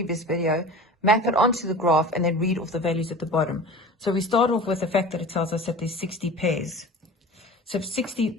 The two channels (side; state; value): both; normal; correlation 0.38